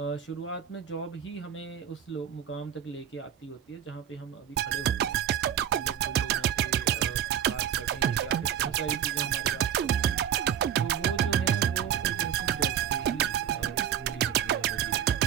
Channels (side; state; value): left; quieter; 9.4 dB